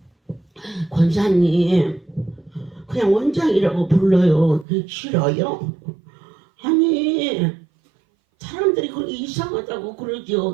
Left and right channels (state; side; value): drops out; left; at 4.7 s